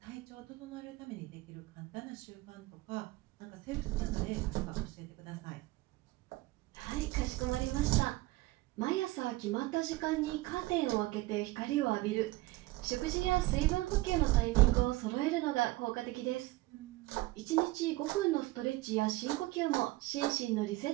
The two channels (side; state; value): left; quieter; 19.5 dB